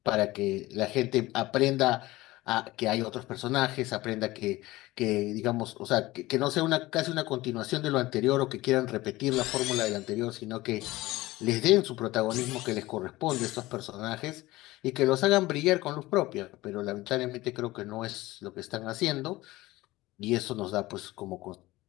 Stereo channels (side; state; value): right; quieter; 18.7 dB